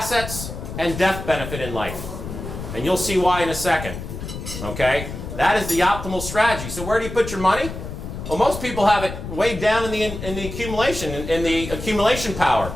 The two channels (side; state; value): left; noise; rumble, 8 dB below the sound